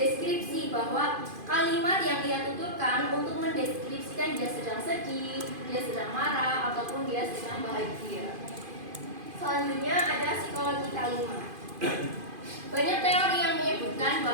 bahwa kalimat yang dia tuturkan untuk mendeskripsikan dia sedang sedih, dia sedang marah, ataupun dia sedang bahagia. Selanjutnya ada psikologi kalimat. Banyak teori yang menyebutkan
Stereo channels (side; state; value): left; late; 2.5 ms